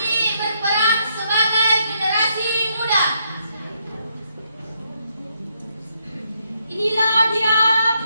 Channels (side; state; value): both; inverted; correlation -0.76